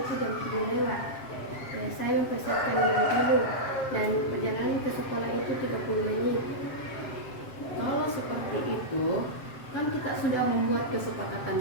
jam 7 lewat. Saya mempersiapkan diri dulu dan perjalanan ke sekolah itu 30 menit. Kalau seperti itu, kan kita sudah membuat kesepakatan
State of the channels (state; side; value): late; right; 7.5 ms